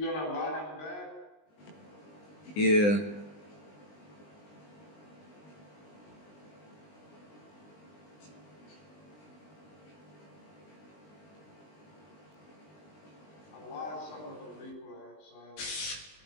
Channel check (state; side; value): late; right; 20 ms